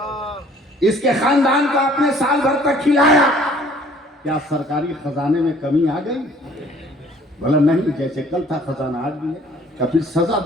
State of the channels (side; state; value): both; normal; correlation 0.56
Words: اس کے خاندان کو آپ نے سال بھر تک کھلایا، کیا سرکاری خزانے میں کمی آ گئی؟ بولا نہیں، جیسے کل تھا خزانہ آج بھی ہے. کہ پھر سزا